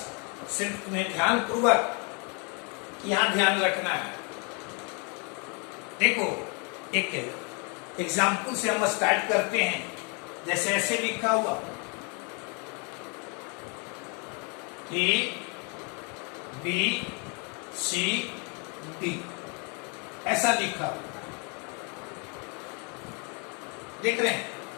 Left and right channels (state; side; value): quieter; right; 34.6 dB